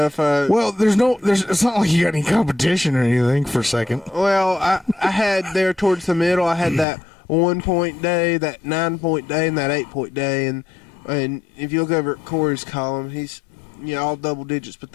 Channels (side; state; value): right; drops out; at 6.9 s